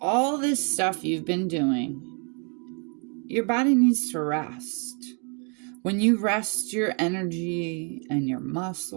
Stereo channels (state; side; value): quieter; left; 37.8 dB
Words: this stuff you've been doing, your body needs to rest. When you rest your energy and your